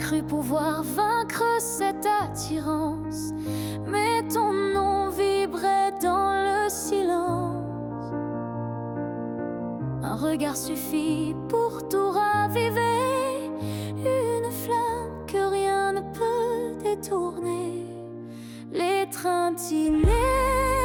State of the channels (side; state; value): both; identical; correlation 1.00